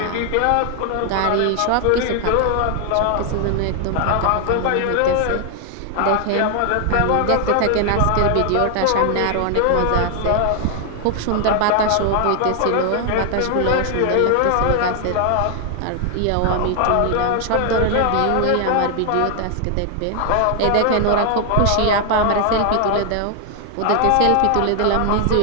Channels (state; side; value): different; both; correlation 0.00